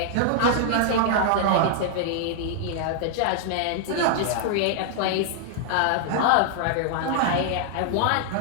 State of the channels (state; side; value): different; both; correlation -0.01